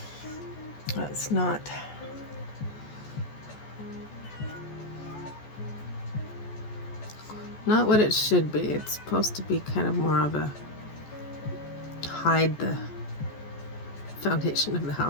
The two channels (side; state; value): right; late; 14 ms